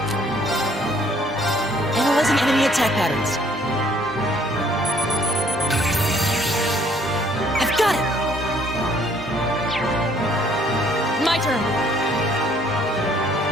Analyzing enemy attack patterns. I've got it! My turn.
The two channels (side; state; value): both; normal; correlation 0.62